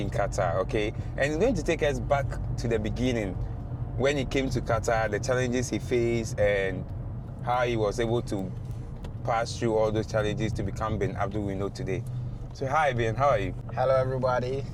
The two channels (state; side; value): identical; both; correlation 1.00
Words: in Qatar, okay? And he's going to take us back to the beginning, when he came to Qatar, the challenges he faced, and how he was able to pass through all those challenges to become Bin Abdul we know today. So hi Bin, how are you? Hello everybody.